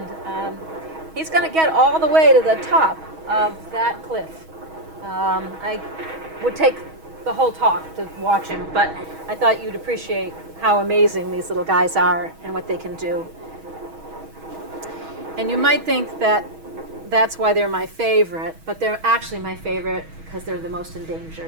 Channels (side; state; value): left; late; 6.3 ms